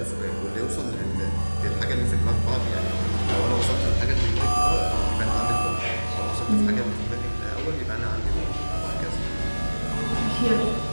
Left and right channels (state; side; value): inverted; both; correlation -1.00